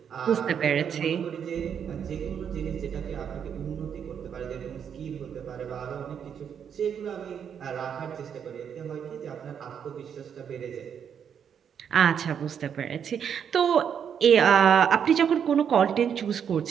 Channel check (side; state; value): left; quieter; 7.9 dB